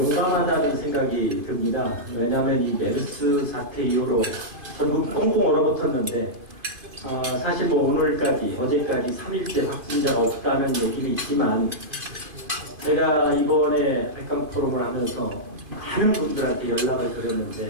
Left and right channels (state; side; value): late; left; 2.5 ms